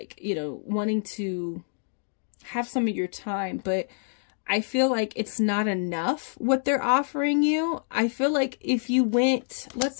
you know, wanting to have some of your time, but I feel like it's not enough what they're offering you. I feel like if you went, let's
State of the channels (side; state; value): right; silent; digital silence